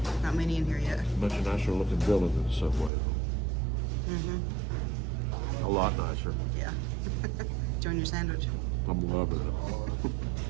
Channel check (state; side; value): drops out; left; at 2.9 s